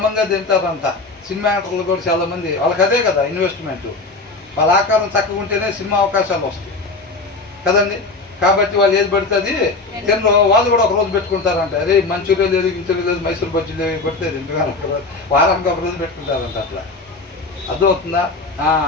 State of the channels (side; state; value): right; quieter; 3.6 dB